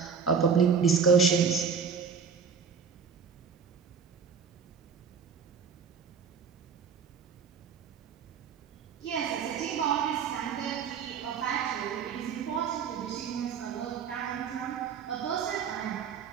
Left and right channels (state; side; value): quieter; left; 6.3 dB